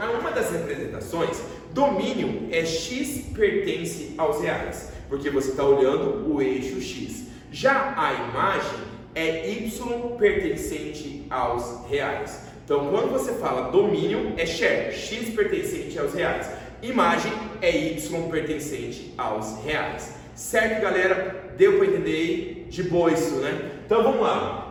uma das representações, domínio é x pertence aos reais, porque você está olhando o eixo X. Já a imagem é y pertencente aos reais. Então, quando você fala domínio, é share, x pertencente aos reais. Imagem é y pertencente aos reais. Certo, galera? Deu para entender aí? De boa isso, né? Então, vamos lá.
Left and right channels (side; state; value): both; identical; correlation 1.00